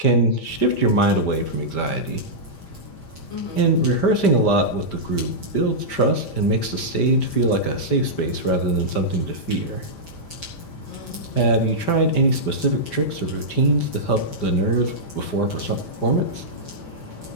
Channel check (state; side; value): late; right; 5.1 ms